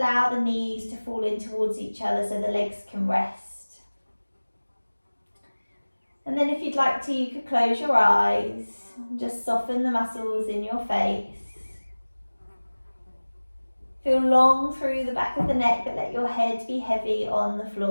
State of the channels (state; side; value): inverted; both; correlation -1.00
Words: the knees to fall in towards each other so the legs can rest. And then if you'd like to, you could close your eyes and just soften the muscles in your face. Feel long through the back of the neck, but let your head be heavy on the